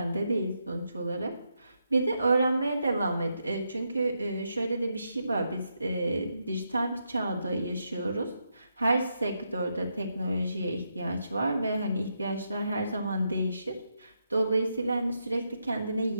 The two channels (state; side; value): inverted; both; correlation -0.82